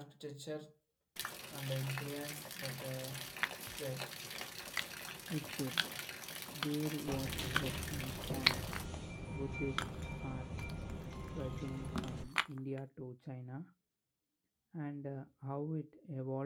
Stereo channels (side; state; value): both; identical; correlation 1.00